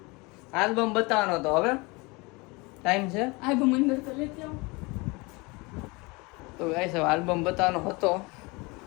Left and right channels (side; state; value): right; quieter; 26.2 dB